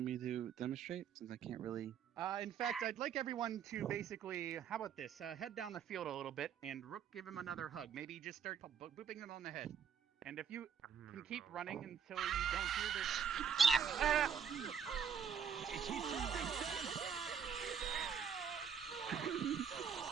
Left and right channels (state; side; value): quieter; left; 7.4 dB